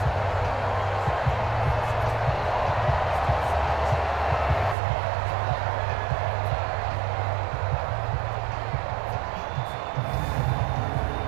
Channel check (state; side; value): drops out; left; at 4.8 s